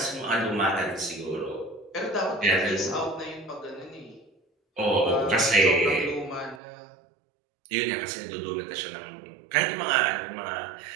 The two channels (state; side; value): drops out; left; at 6.6 s